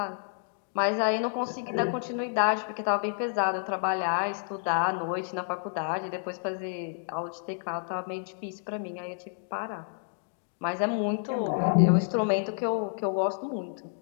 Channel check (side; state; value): right; silent; digital silence